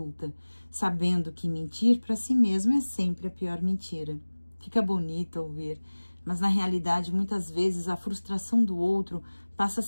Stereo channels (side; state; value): both; inverted; correlation -1.00